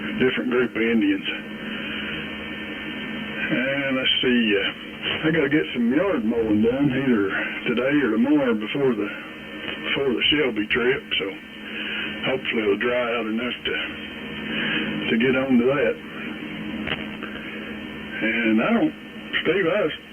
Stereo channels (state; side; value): identical; both; correlation 1.00